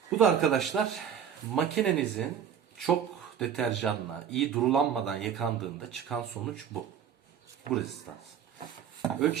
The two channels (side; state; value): left; quieter; 8.4 dB